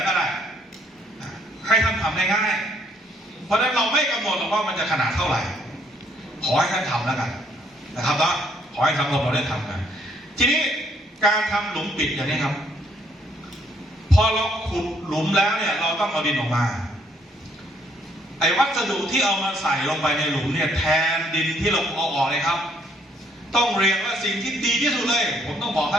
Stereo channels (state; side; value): normal; both; correlation 0.68